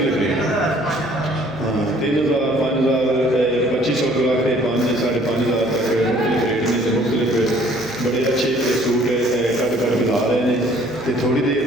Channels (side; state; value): right; noise; hum, 25 dB below the sound